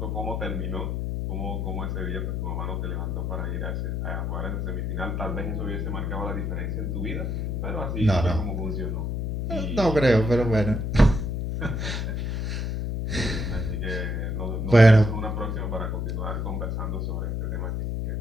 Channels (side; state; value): left; noise; hum, 1 dB below the sound